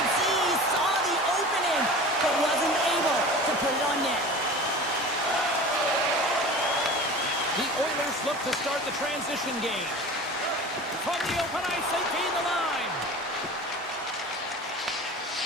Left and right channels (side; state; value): both; normal; correlation 0.37